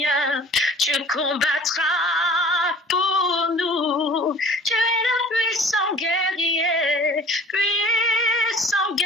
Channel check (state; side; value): normal; both; correlation 0.48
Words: tu combattras pour nous. Tu es le puissant guerrier, puissant